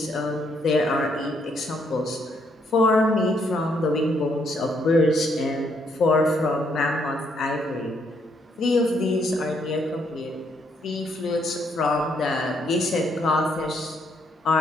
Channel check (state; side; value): normal; both; correlation 0.72